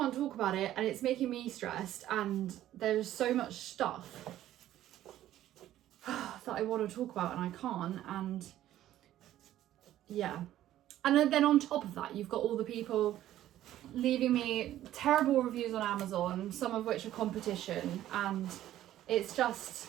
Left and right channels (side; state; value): left; quieter; 13.1 dB